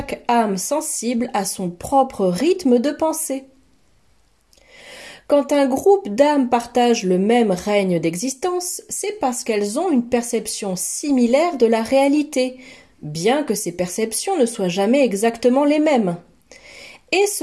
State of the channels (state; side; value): identical; both; correlation 1.00